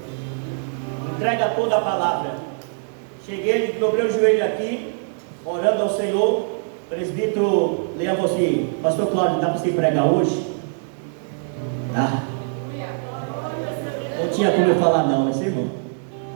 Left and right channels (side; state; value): left; silent; digital silence